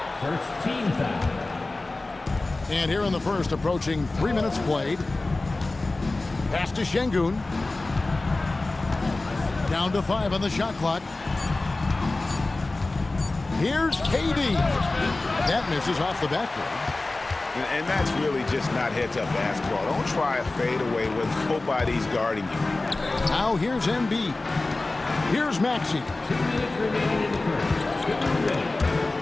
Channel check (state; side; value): quieter; right; 3.1 dB